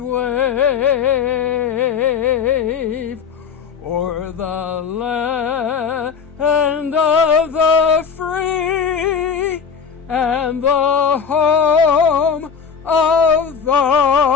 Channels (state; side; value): quieter; right; 6.5 dB